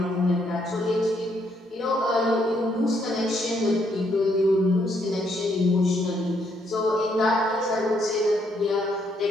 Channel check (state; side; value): normal; both; correlation 0.72